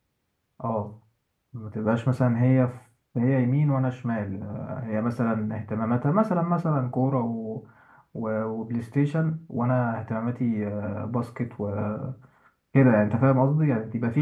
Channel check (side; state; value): both; identical; correlation 1.00